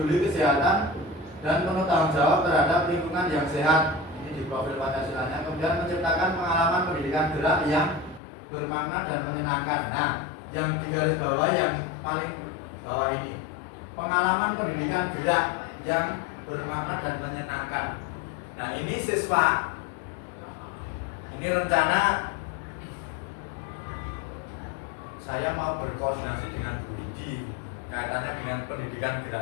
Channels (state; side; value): drops out; right; at 8.2 s